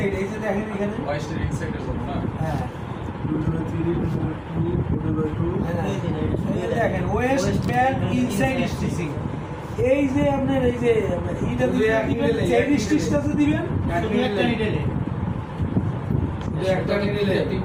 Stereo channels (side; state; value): both; identical; correlation 1.00